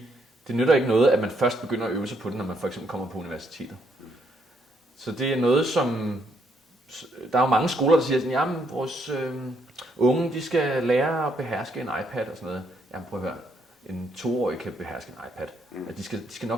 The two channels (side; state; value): both; normal; correlation 0.73